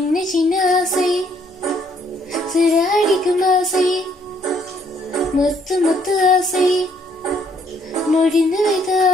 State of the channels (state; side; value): normal; both; correlation 0.67